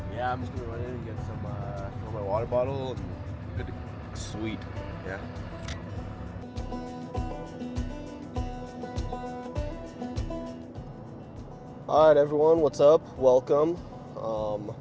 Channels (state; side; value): identical; both; correlation 1.00